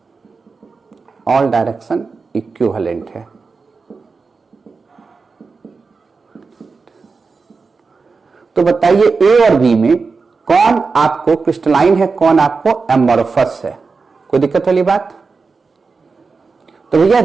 ऑल डायरेक्शन इक्विवेलेंट है। तो बताइए ए और बी में कौन आपको क्रिस्टलाइन है, कौन आपको एमॉर्फस है, कोई दिक्कत वाली बात। तो भैया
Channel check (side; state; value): left; quieter; 4.5 dB